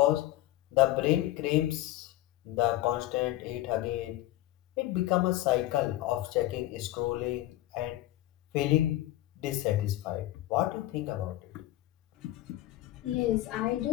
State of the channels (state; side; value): quieter; right; 15.8 dB